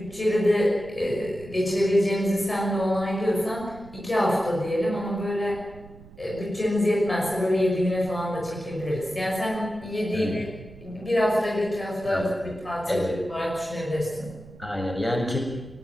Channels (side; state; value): right; noise; rumble, 20 dB below the sound